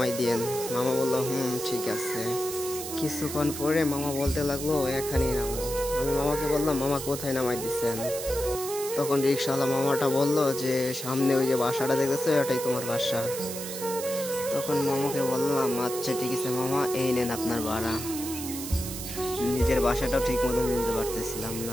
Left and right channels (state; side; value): noise; right; hiss, 8 dB below the sound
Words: দিয়েন। মামা বলল, ঠিক আছে। কিছুক্ষণ পরে মামা বলতে লাগলো, এখানেই নামো। আমি মামাকে বললাম, মামা কোথায় নামাই দিচ্ছেন? তখন রিক্সাওয়ালা মামাটা বলল যে সামনে ওই যে বাসাটা দেখতেছো, ওটাই তোমার বাসা। তখন মামাকে বললাম, আচ্ছা ঠিক আছে মামা, এই নেন আপনার ভাড়া। নিজের বাসাটাও ঠিক মতো নিতে পারতেছিলাম